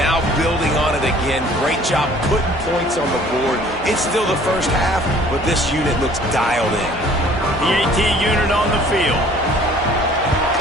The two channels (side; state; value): right; noise; hum, 18 dB below the sound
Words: building on it again. Great job putting points on the board. It's still the 1st half, but this unit looks dialed in. The AT unit on the field.